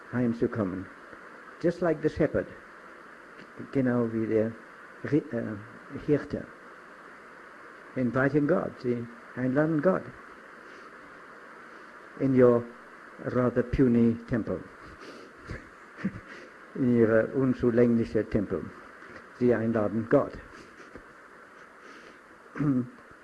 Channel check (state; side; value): identical; both; correlation 1.00